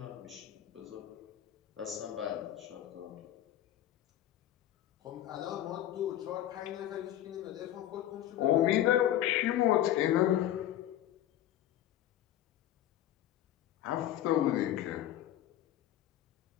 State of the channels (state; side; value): quieter; right; 12.4 dB